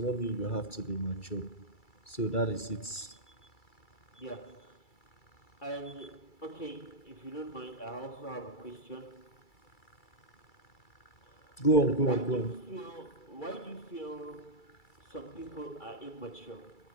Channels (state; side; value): late; right; 2.3 ms